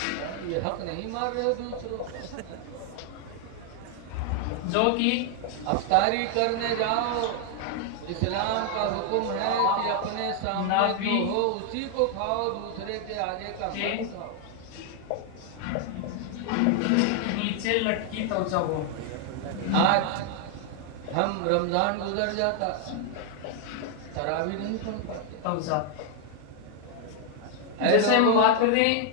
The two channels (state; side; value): different; both; correlation 0.00